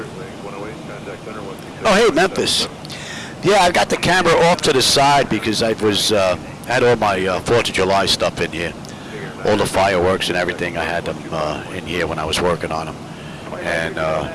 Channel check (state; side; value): identical; both; correlation 1.00